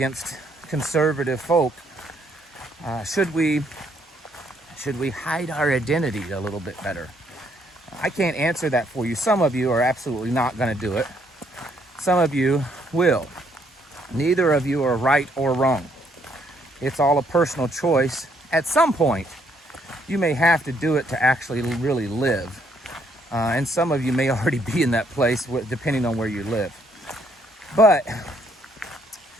conservative folk. Should we hide our identity a little bit better? I can't answer that for you. Some of you are absolutely not going to do it. Some of you will. Neither of you are right or wrong. It's all a personal choice. At some point, you may have to do it to actually really live. And some of you may already be in that place, depending on where you live. But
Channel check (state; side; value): normal; both; correlation 0.70